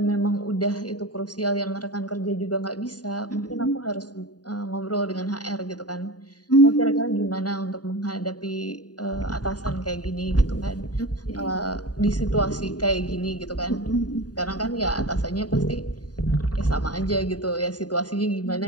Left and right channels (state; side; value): late; right; 0.68 ms